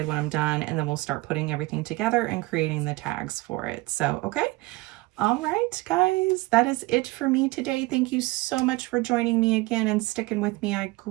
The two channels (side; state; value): left; quieter; 21.7 dB